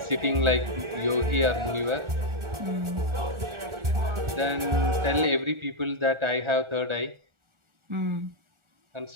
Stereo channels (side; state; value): left; late; 1.4 ms